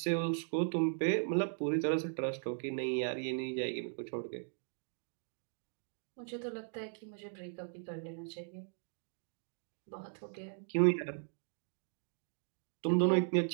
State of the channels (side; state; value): left; silent; digital silence